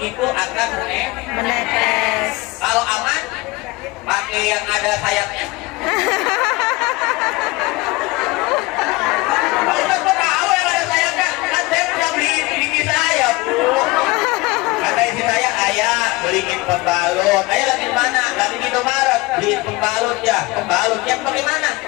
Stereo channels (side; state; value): right; quieter; 22.4 dB